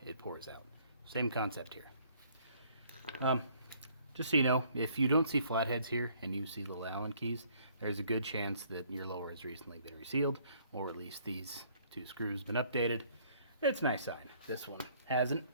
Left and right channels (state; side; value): inverted; both; correlation -0.62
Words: it pours out. Same concept here. Just so you know, if you don't see flatheads here and you see little Allen keys, there's a good chance that your lower has recently been resealed, or at least these two screws been updated. It's a nice sign. This one hasn't.